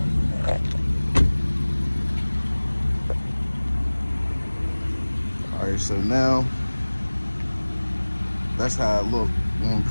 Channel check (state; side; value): inverted; both; correlation -1.00